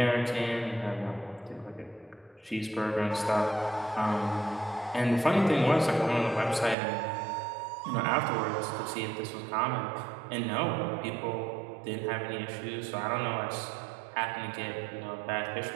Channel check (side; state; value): left; drops out; at 6.8 s